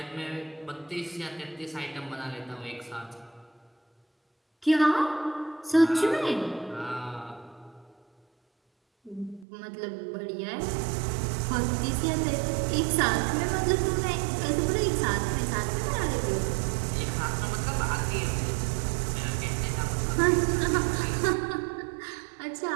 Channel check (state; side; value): drops out; left; at 9.5 s